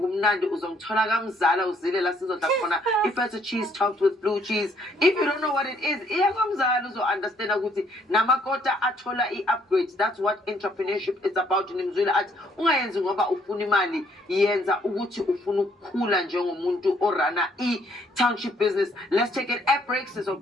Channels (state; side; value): normal; both; correlation 0.66